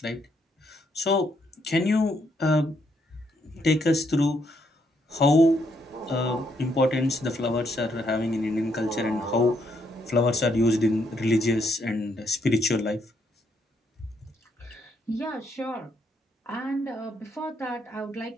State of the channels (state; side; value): normal; both; correlation 0.74